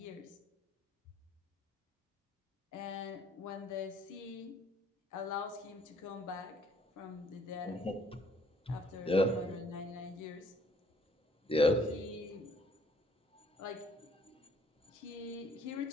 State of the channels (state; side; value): normal; both; correlation 0.62